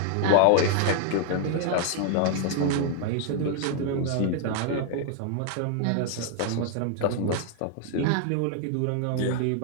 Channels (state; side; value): different; both; correlation 0.00